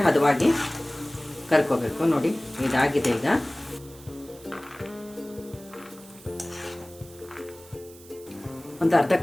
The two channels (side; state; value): right; noise; hiss, 21 dB below the sound